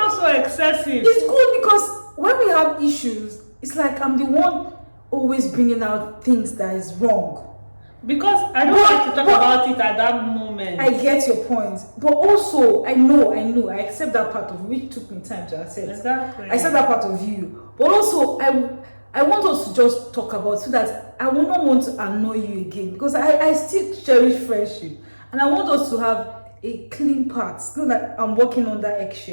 so excessive. It's good because when we have issues, it's like I'm the one always bringing out things that is wrong. Because I don't like to talk about it at that moment. I get your point. But also, I know, I accept that part of you, which took me time to accept. Exactly. I accept that part of you. But also, I want us to just talk about so that I will not want to annoy you again. Because I still cherish friendship. And I want us to have a clean path. Not that I'm working on that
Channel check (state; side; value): inverted; both; correlation -1.00